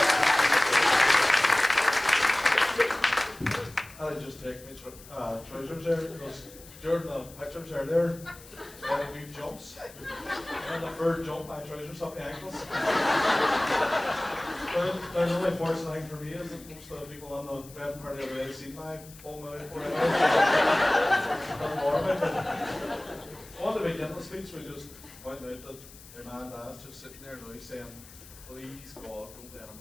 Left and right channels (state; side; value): noise; left; hiss, 20 dB below the sound